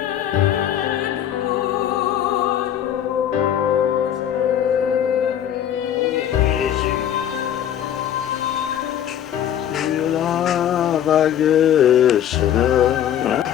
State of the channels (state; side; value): quieter; right; 10.3 dB